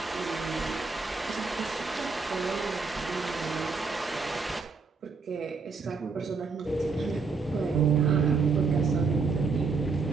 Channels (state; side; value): quieter; left; 4.5 dB